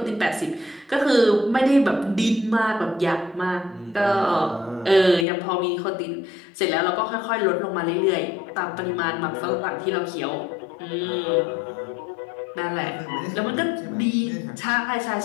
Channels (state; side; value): drops out; right; at 5.2 s